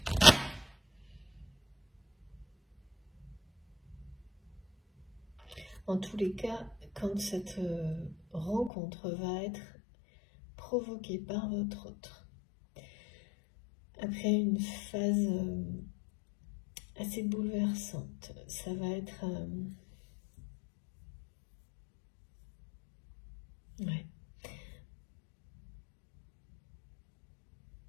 En tous les cas, quand cette rencontre va être provoquée par votre autre, après une phase assez bouleversante, ça va être... ouais.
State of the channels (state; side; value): drops out; right; at 8.7 s